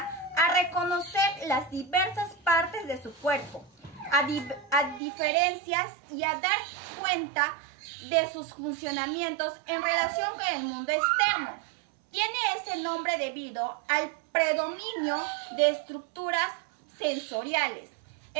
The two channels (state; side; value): drops out; left; at 5.0 s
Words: a reconocer las diversas partes de su cuerpo, a diferencias y a dar cuenta de sus funcionamientos en relación con el mundo externo. Tiene ese nombre debido al predominio de estructuras sensoriales.